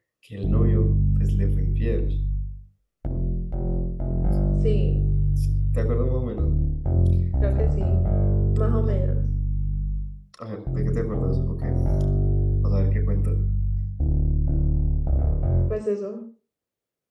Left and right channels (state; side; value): identical; both; correlation 1.00